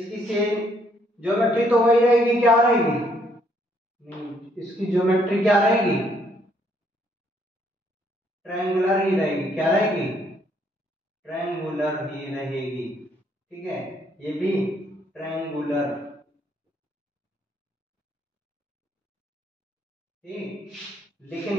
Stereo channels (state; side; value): normal; both; correlation 0.69